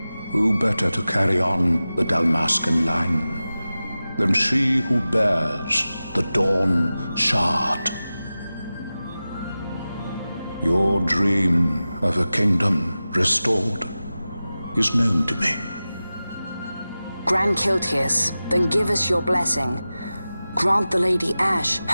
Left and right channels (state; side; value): inverted; both; correlation -0.95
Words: Who better to carry on the Dalmascan line than she who bears the Dawn Shard? Your dream of a kingdom restored is known to me. Grand Kiltias, then give us your blessing. Grant the Lady Ash